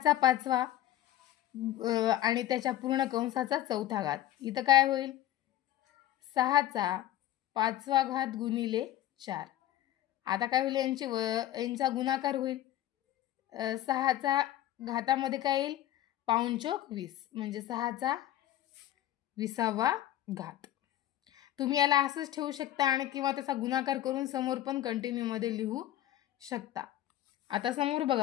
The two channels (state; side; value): quieter; right; 13.3 dB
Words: 5वा आणि त्याच्या पूर्ण कंसाचा चौथा घात। इथं काय होईल? 6चा 5वा घात गुणिले 4। आता काय होईल? यांचा गुणाकार होईल। 6चा घातामध्ये काय येईल? पाऊण चौक 20, म्हणजे 6चा 20वा घात। तुम्ही याला असंच ठेवू शकता आणि किंवा त्याचा गुणाकार करून समोर पण कंटिन्यू मध्ये लिहू शकता। आता समोर